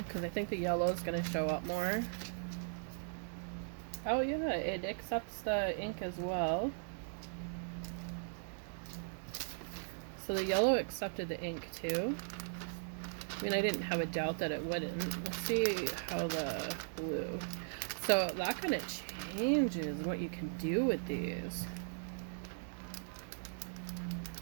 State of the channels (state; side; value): silent; left; digital silence